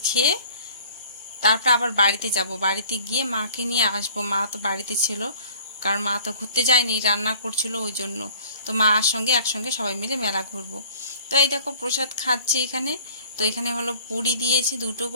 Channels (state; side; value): inverted; both; correlation -0.50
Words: খেয়ে তারপর আবার বাড়িতে যাব, বাড়িতে গিয়ে মাকে নিয়ে আসবো। মা তো বাড়িতে ছিল, কারণ মা তো ঘুরতে যায়নি, রান্না করছিল ওই জন্য। তো মার সঙ্গে একসঙ্গে সবাই মিলে মেলা ঘুরবো। তো এই দেখো প্রসাদ খাচ্ছি এখানে। তো এখানে হলো পুরি দিয়েছে 2টো